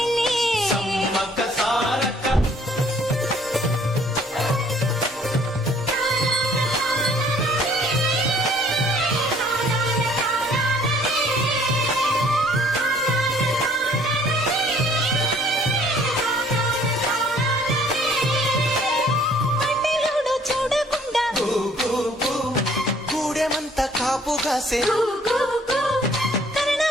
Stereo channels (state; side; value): normal; both; correlation 0.58